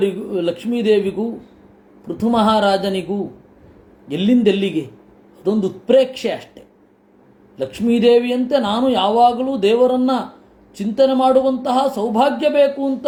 ಲಕ್ಷ್ಮೀದೇವಿಗೂ ಪೃಥು ಮಹಾರಾಜನಿಗೂ ಎಲ್ಲಿಂದೆಲ್ಲಿಗೆ ಅದೊಂದು ಉತ್ಪ್ರೇಕ್ಷೆ ಅಷ್ಟೆ. ಲಕ್ಷ್ಮೀದೇವಿಯಂತೆ ನಾನು ಯಾವಾಗಲೂ ದೇವರನ್ನು ಚಿಂತನೆ ಮಾಡುವಂತಹ ಸೌಭಾಗ್ಯ ಬೇಕು ಅಂತ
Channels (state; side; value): identical; both; correlation 1.00